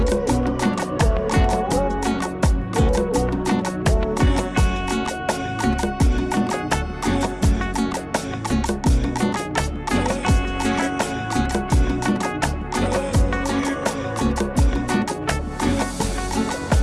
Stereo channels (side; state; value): both; identical; correlation 1.00